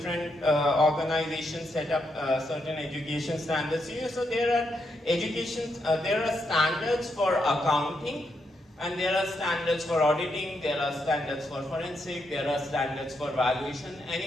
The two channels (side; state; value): both; normal; correlation 0.80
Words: organizations set up certain education standards. So there are there are standards for accounting, and there are standards for auditing, there are standards for forensic, there are standards for valuation.